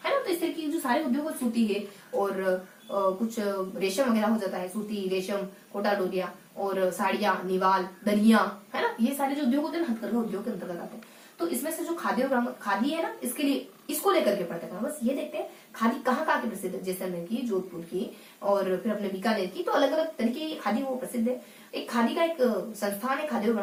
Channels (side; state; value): both; identical; correlation 1.00